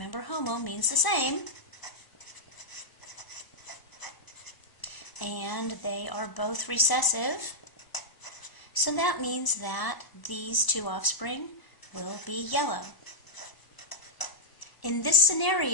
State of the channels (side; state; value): right; late; 1.0 ms